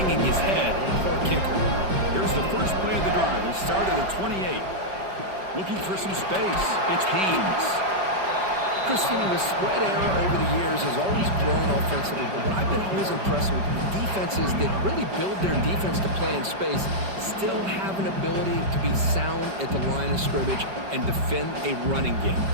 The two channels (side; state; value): left; late; 5.2 ms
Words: his head. Poor kicker. Here's the first play of the drive. They start at the 28. Looking for some space. It's Haynes. Chris, you know, the spread era over the years has always grown offensively, but what I've been always impressed with defenses that really build their defense to play in space still have an ability to be sound at the line of scrimmage and defend a running game.